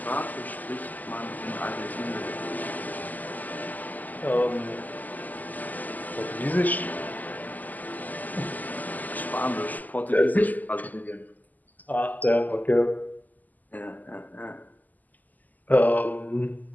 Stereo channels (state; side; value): late; right; 0.082 ms